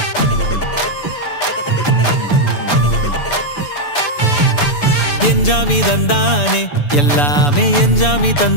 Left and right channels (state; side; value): late; right; 6.9 ms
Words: என்ஜாமி தந்தானே எல்லாமே, என்ஜாமி